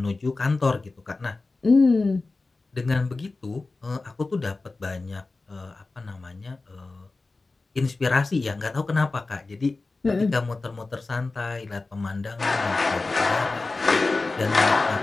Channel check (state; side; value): quieter; right; 3.5 dB